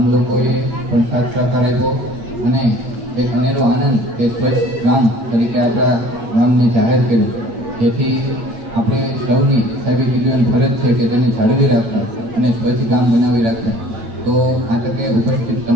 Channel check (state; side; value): late; left; 8.7 ms